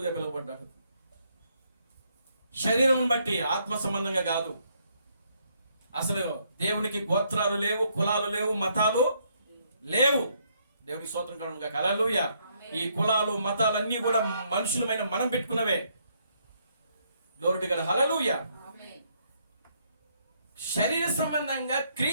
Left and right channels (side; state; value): both; inverted; correlation -0.72